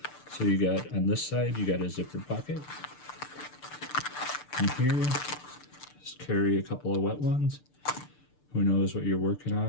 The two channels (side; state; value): right; late; 6.8 ms